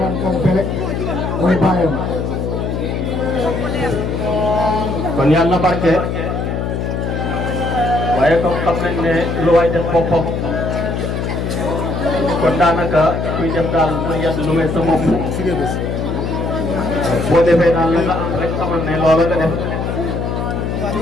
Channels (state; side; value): noise; left; hum, 2 dB below the sound